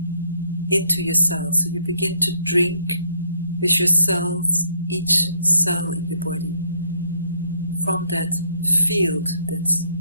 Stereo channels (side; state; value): both; inverted; correlation -0.69